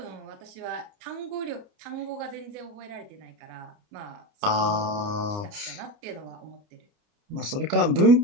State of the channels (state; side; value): late; left; 29 ms